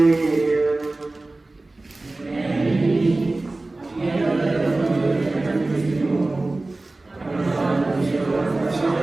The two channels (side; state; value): left; quieter; 3.0 dB